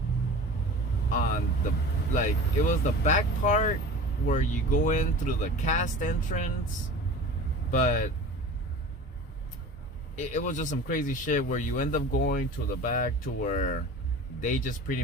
on the, like, it was the back part where you go in through the cast entrance, but it was just some crazy shit where you end up going to the back to where they just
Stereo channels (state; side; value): normal; both; correlation 0.38